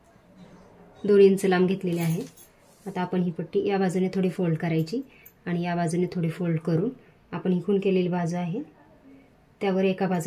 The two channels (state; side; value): identical; both; correlation 1.00